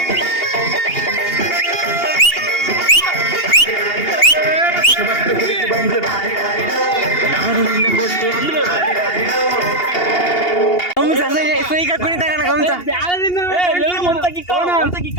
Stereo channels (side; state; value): right; late; 2.8 ms